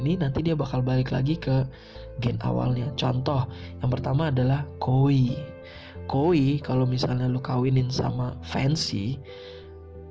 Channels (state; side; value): identical; both; correlation 1.00